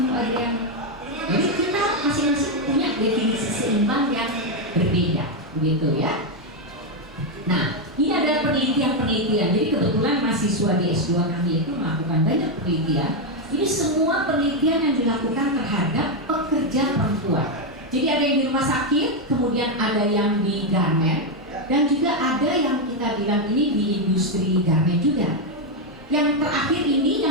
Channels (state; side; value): normal; both; correlation 0.04